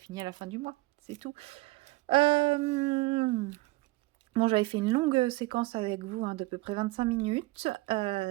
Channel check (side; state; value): left; quieter; 22.0 dB